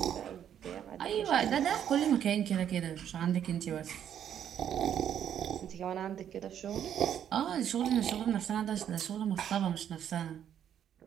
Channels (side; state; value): left; quieter; 9.6 dB